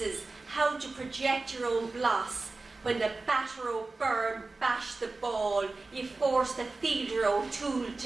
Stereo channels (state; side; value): quieter; left; 3.5 dB